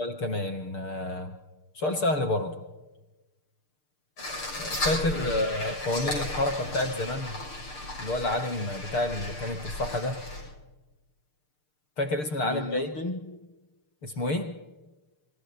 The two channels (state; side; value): late; right; 6.6 ms